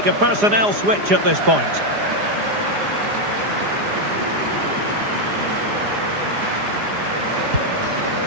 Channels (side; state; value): left; late; 4.9 ms